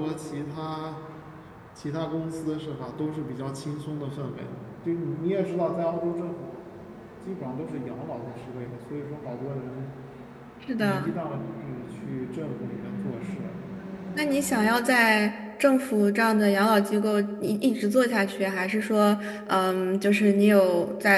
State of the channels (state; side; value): identical; both; correlation 1.00